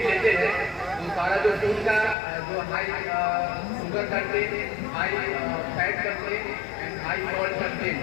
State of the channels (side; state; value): right; drops out; at 2.1 s